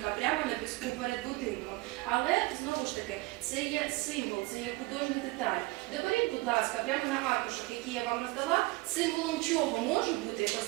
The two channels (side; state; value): left; quieter; 22.0 dB